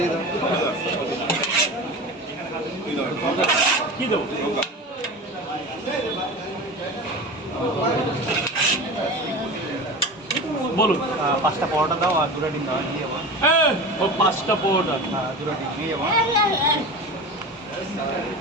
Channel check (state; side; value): normal; both; correlation 0.30